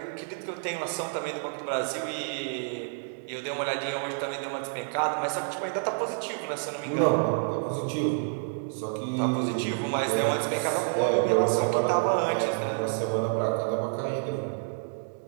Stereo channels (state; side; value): silent; left; digital silence